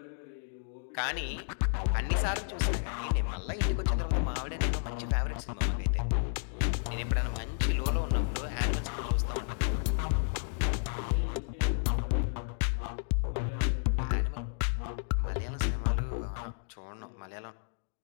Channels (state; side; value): silent; right; digital silence